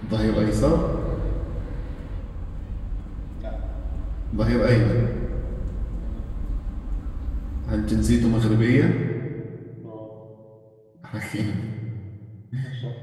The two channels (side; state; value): both; identical; correlation 1.00